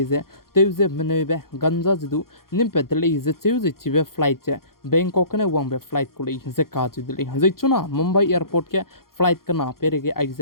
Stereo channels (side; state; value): right; late; 0.92 ms